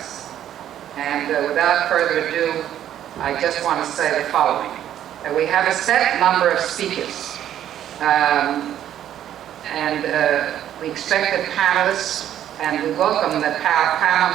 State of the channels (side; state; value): left; quieter; 11.0 dB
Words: And without further ado, I just want to say the following. We have a set number of speakers, and we expect the panelists, and we welcome that